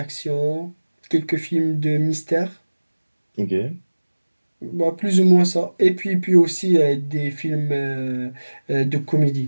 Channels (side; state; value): both; inverted; correlation -1.00